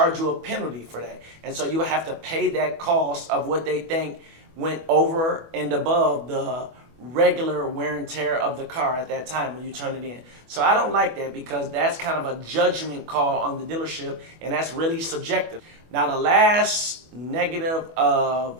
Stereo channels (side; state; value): left; late; 25 ms